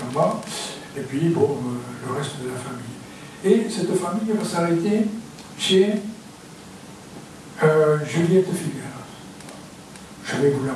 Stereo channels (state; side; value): identical; both; correlation 1.00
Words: bas, et puis bon, le reste de la famille. Et cette famille va s'arrêter chez Juliette Figueras. Je vais vous la